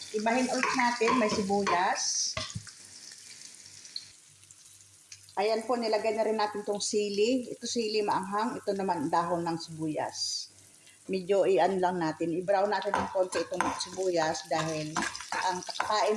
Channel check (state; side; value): identical; both; correlation 1.00